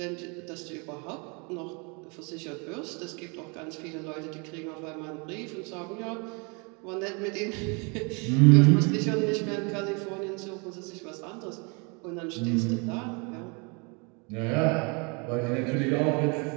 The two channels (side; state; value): left; quieter; 32.3 dB